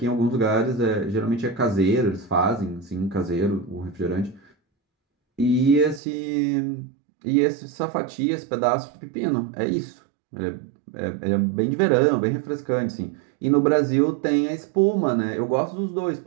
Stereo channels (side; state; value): left; drops out; at 6.0 s